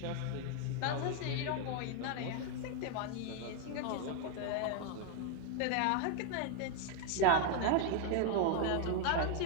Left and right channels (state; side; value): different; both; correlation 0.01